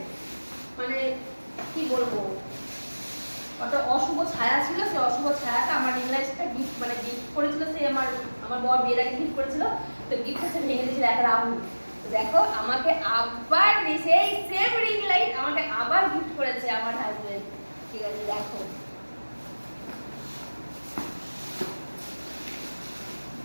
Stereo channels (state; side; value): inverted; both; correlation -1.00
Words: মানে কি বলবো, কত অশুভ ছায়া ছিল। সেই অশুভ ছায়াটা আমার রিং লাইটটা গিফট করেছিল। সে আমার বর বিয়ের আগে গিফট করেছিল। তো গিফটটা সে ভেঙে দিয়েছিল এক রাহুল। তো দেখো, আমাকে আবার সেই সেম রিং লাইট আমাকে আবার গিফট করেছে আমার হাজবেন্ড। ঠিক আছে, দেখো